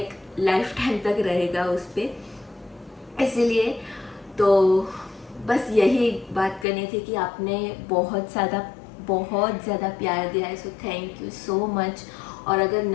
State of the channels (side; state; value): right; drops out; at 6.7 s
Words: लाइफ टाइम तक रहेगा उस पर। इसीलिए तो बस यही बात करनी थी कि आपने बहुत ज़्यादा प्यार दिया है, so thank you so much. और अगर